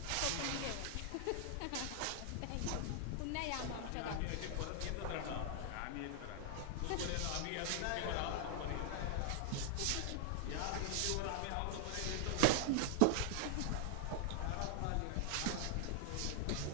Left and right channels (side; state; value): both; different; correlation 0.00